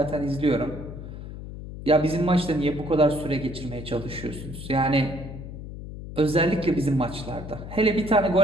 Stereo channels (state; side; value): noise; left; hum, 11 dB below the sound